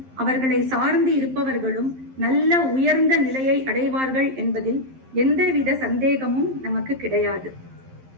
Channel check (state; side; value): late; left; 11 ms